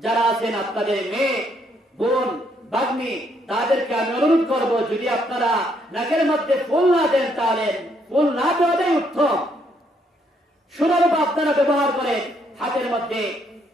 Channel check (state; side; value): normal; both; correlation 0.72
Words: যারা আছেন আপনাদের মেয়ে, বোন, ভাগ্নি, তাদেরকে আমি অনুরোধ করব, যদি আপনারা নাকের মধ্যে ফুল না দেন, তাহলে ফুল না দেওয়াটাই উত্তম। সুরূপ আপনারা ব্যবহার করেন, হাতের মধ্যে,